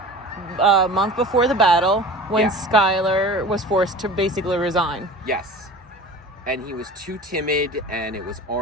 before the battle when Schuyler was forced to basically resign. Yes. And he was too timid, and it was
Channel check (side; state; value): both; normal; correlation 0.38